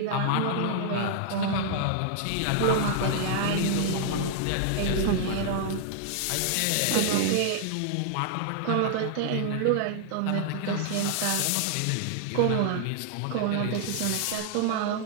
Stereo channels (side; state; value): both; different; correlation -0.01